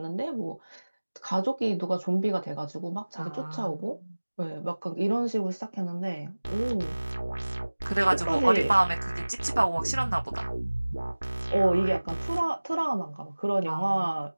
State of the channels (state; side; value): inverted; both; correlation -1.00